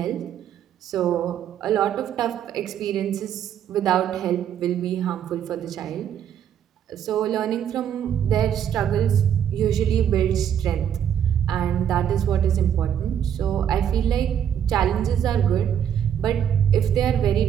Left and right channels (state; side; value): quieter; left; 9.3 dB